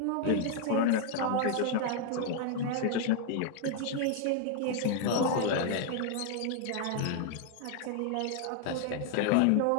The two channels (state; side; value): different; both; correlation 0.00